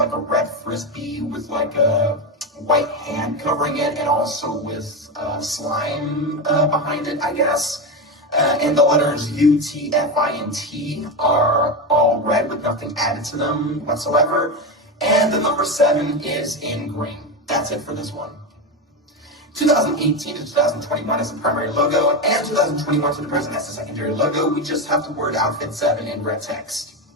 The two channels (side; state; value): both; normal; correlation 0.15